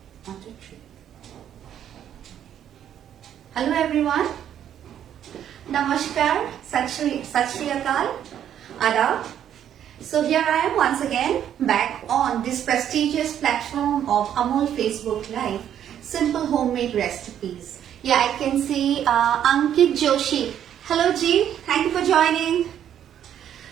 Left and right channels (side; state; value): left; quieter; 10.0 dB